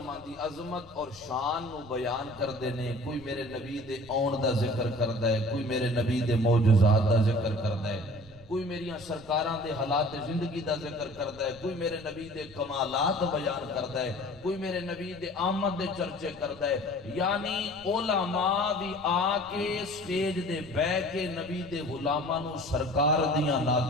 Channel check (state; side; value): noise; left; rumble, 24 dB below the sound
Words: دی عظمت اور شان نو بیان کر دینے کوئی میرے نبی دے آن دا ذکر کردہ ہے کوئی میرے نبی دے معجزات دا ذکر کردہ ہے کوئی میریاں سرکاراں دے حالات زندگی دا ذکر کردہ ہے کوئی میرے نبی دے کمالات بیان کردہ ہے کوئی میرے نبی دے آمد دے چرچے کردہ ہے یعنی علماء بھی آکے سٹیج دے بے کے نبی دے غلاماں نو سرکار دیاں